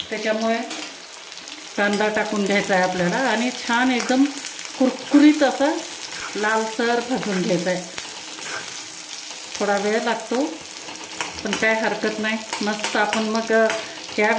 त्याच्यामुळे कांदा टाकून घ्यायचा आहे आपल्याला आणि छान एकदम कुरकुरीत असा लालसर भाजून घ्यायचा आहे। थोडा वेळ लागतो पण काय हरकत नाही, मस्त आपण मग या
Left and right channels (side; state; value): both; identical; correlation 1.00